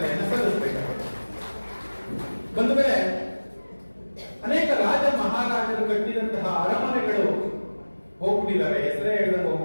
ಸಲ್ಲಿಸಬೇಕಾಗುತ್ತೆ. ಬಂದ ಮೇಲೆ ಅನೇಕ ರಾಜ ಮಹಾರಾಜರು ಕಟ್ಟಿದಂತಹ ಅರಮನೆಗಳು ಹೋಗ್ಬಿಟ್ಟಿದ್ದಾರೆ, ಹೆಸರೇ ಹೇಳದಂಗೆ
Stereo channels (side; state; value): both; inverted; correlation -1.00